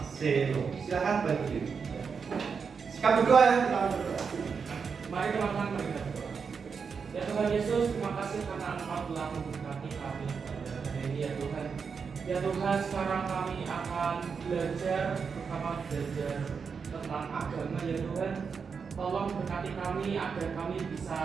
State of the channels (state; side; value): quieter; left; 5.8 dB